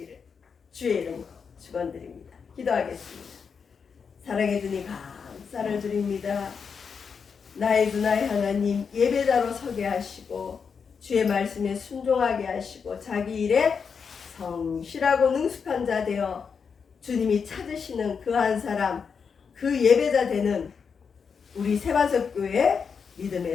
주의 이름으로 축원드립니다. 기도하겠습니다. 사랑해 주님 감사를 드립니다. 나의 주 나의 하나님 예배자로 서게 하시고 주의 말씀에 순종하게 하시고 자기 일에 성실하고 능숙한 자 되어 주님이 찾으시는 그 한 사람 그 예배자 되는 우리 세반석교회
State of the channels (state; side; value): quieter; right; 6.0 dB